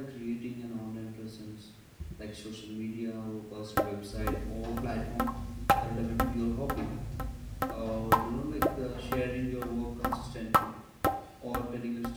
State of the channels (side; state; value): both; identical; correlation 1.00